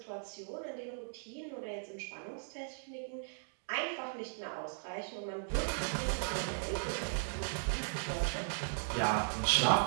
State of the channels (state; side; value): silent; left; digital silence